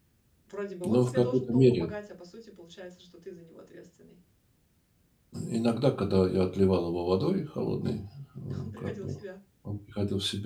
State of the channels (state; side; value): identical; both; correlation 1.00